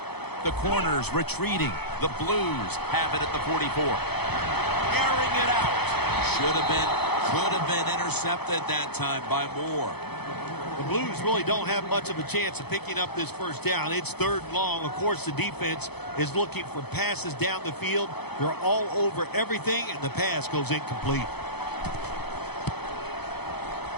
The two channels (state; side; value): late; right; 0.98 ms